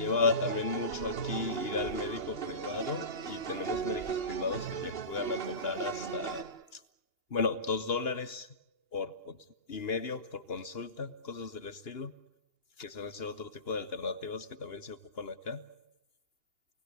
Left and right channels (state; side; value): late; right; 2.9 ms